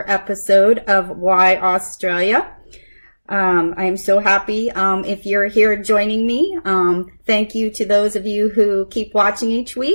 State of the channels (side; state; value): both; inverted; correlation -1.00